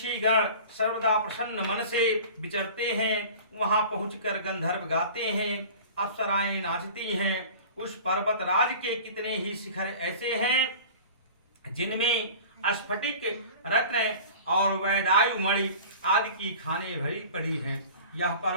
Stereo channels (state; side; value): inverted; both; correlation -0.41